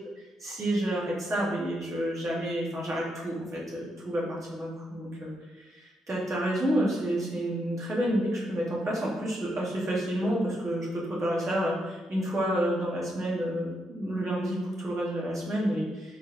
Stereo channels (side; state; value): both; normal; correlation 0.81